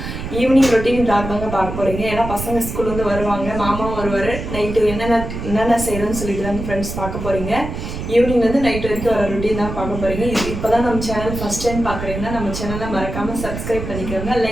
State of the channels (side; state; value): right; noise; rumble, 7 dB below the sound